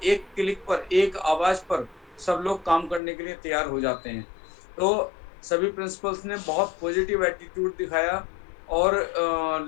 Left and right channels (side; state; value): right; drops out; at 3.0 s